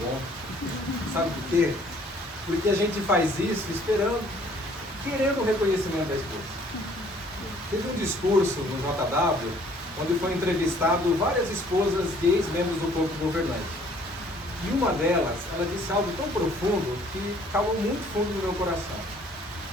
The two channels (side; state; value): both; normal; correlation 0.59